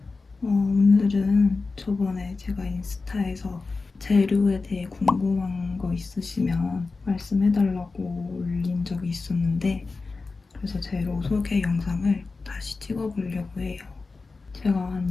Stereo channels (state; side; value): quieter; right; 4.0 dB